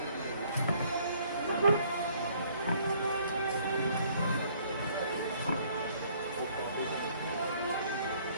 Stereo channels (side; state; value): both; inverted; correlation -0.61